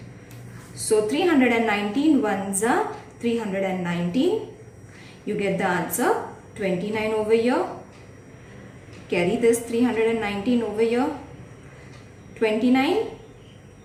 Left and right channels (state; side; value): identical; both; correlation 1.00